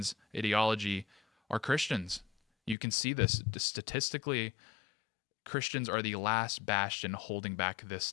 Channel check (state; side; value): drops out; right; at 2.8 s